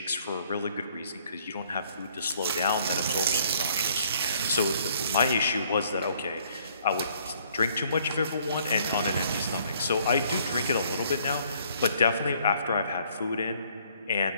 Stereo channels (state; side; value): inverted; both; correlation -0.63